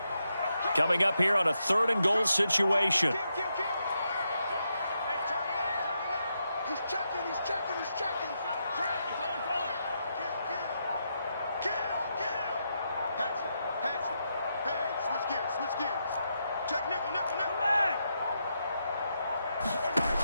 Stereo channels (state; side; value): inverted; both; correlation -0.83